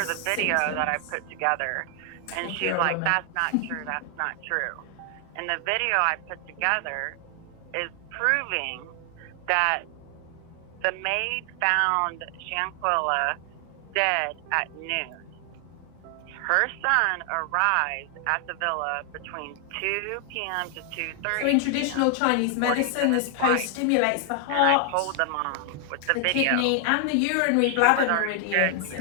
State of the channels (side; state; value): both; different; correlation 0.00